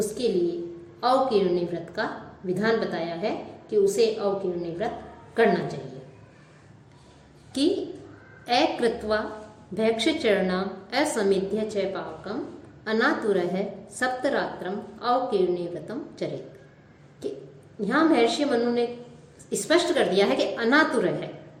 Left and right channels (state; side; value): identical; both; correlation 1.00